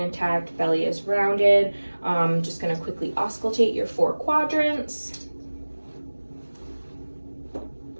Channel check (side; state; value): both; inverted; correlation -1.00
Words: Belly is rounded. Just gonna quickly auscultate your 4 quadrants.